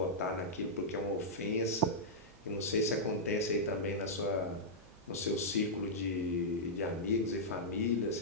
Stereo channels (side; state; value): right; noise; hum, 26 dB below the sound